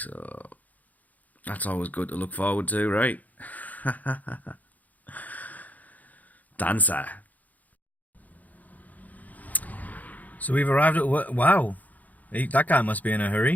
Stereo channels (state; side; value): late; right; 0.079 ms